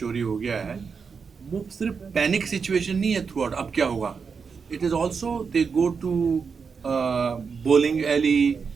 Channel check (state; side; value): quieter; left; 5.6 dB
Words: हो गया है, वो सिर्फ पैनिक सिचुएशन नहीं है थ्रू आउट, अब क्या होगा। It is also they go to bowling alley,